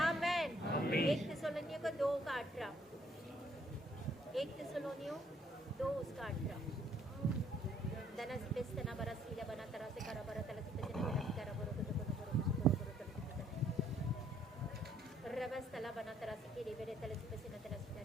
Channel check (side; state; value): both; normal; correlation 0.66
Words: 1 थिस्सलुनीयों को 2 का 18, 1 थिस्सलुनीयों 2 उसका 18। दनसी पेस्तना बरसीला बना तरह से करा बरा तलसी पेस्तना तलसी करा बोरो को रबस्तला बना तरह से के रे तलसी पेस्तना तलसी